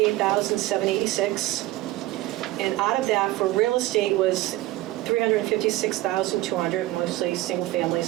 And out of that, for real estate was 356,200, mostly single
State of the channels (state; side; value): quieter; left; 17.3 dB